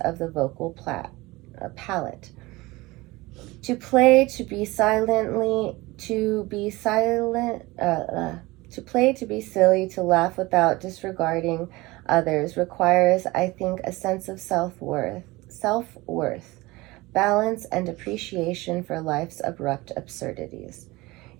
of the vocal palette. To play, to be silent, to be silly, to laugh without disregarding others requires, I think, a sense of self-worth, balance, and appreciation for life's abrupt absurdities.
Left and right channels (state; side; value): quieter; left; 21.2 dB